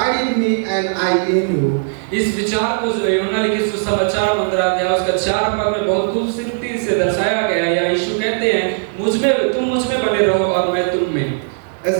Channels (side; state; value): left; silent; digital silence